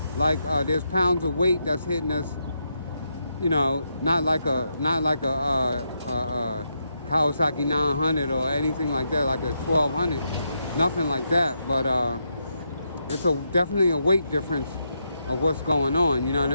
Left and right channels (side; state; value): both; inverted; correlation -0.82